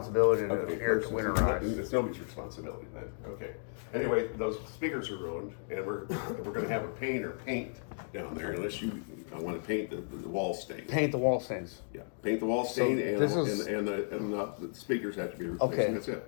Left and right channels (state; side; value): silent; right; digital silence